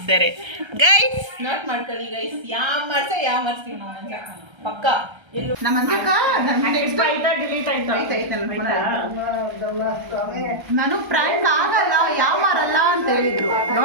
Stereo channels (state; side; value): late; left; 1.3 ms